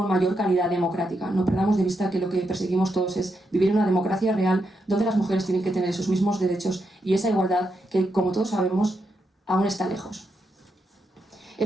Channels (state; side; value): normal; both; correlation 0.83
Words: mayor calidad democrática. No perdamos de vista que lo que perseguimos todos es vivir en una democracia real donde las mujeres tienen que tener esos mismos derechos y esa igualdad que, como todos sabemos, aún está lejos.